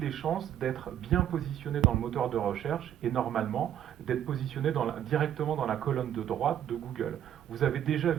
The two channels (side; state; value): left; quieter; 10.6 dB